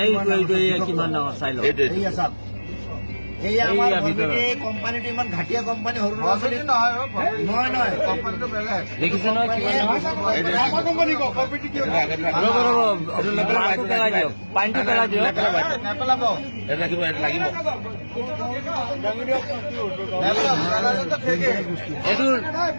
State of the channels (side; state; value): both; inverted; correlation -1.00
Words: কিমান ডাঙৰ চাই লওঁ এই আমাৰ কোম্পানিটো ইমান ঘাটিয়া কোম্পানি সৰু ল'ৰা ছোৱালী নহয় কোম্পানিটো বেলেগ দেখিছে নহয় পানীটো পেলাই দিয়ক নেপেলাব এইটো